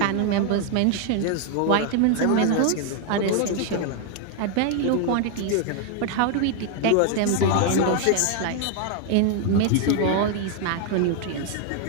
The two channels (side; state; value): both; different; correlation 0.00